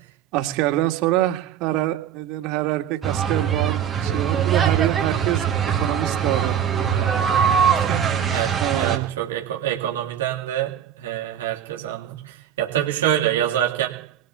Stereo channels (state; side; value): quieter; left; 9.5 dB